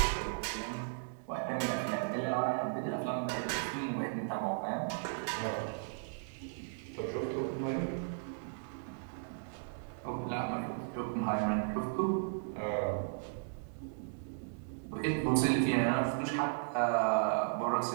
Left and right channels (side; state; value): left; silent; digital silence